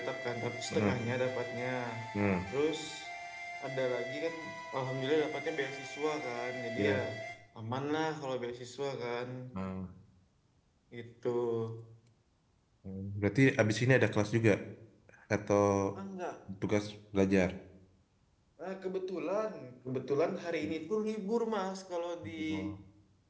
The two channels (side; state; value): both; identical; correlation 1.00